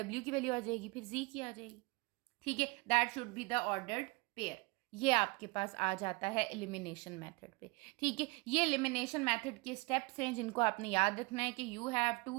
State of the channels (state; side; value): quieter; left; 26.2 dB